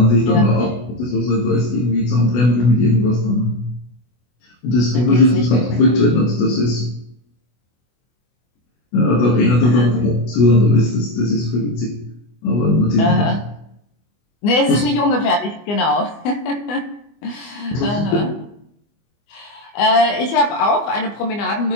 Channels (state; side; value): late; right; 24 ms